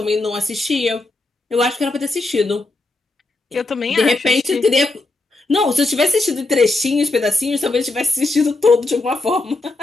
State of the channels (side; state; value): right; quieter; 3.0 dB